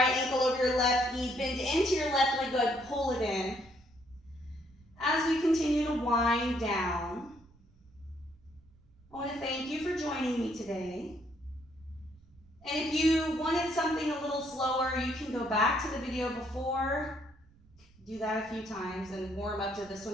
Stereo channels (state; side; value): noise; right; rumble, 27 dB below the sound